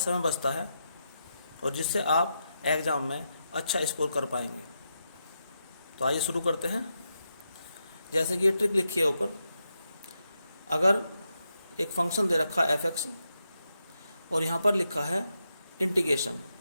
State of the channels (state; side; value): inverted; both; correlation -0.85